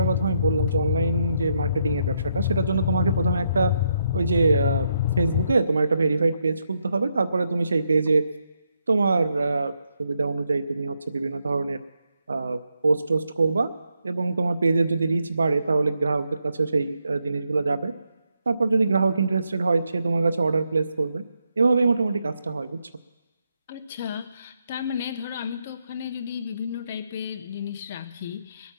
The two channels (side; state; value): both; inverted; correlation -0.79